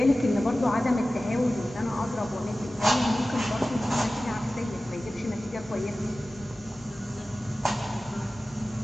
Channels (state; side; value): normal; both; correlation 0.96